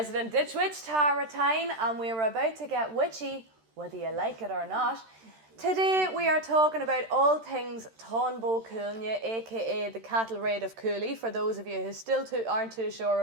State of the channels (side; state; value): left; late; 13 ms